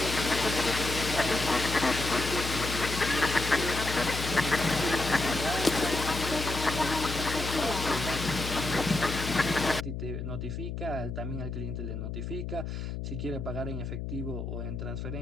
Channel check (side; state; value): left; noise; hum, 5 dB below the sound